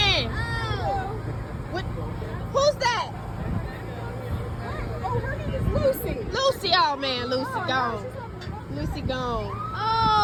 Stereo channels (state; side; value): identical; both; correlation 1.00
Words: What? Who's that? Oh, her name is Lucy. Lucy. Oh man, Lucy gone. Lucy gone.